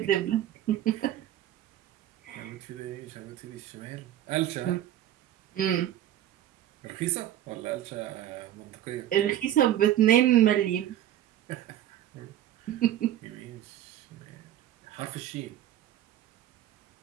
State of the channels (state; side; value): quieter; left; 12.2 dB